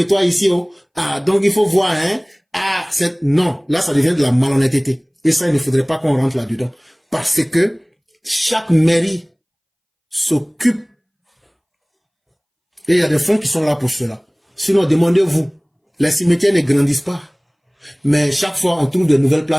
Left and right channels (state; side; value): identical; both; correlation 1.00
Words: ici, donc il faut voir, non, là ça devient de la malhonnêteté. Et ça, il ne faudrait pas qu'on rentre là-dedans. Parce que chaque mairie s'occupe, et il y a des fonds qui sont là pour cela. Sinon, demandez-vous, les cimetières ne grandissent pas. Mais chaque fois, on trouve de nouvelles